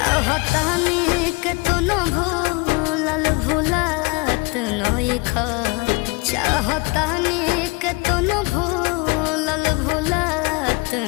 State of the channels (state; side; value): quieter; right; 27.2 dB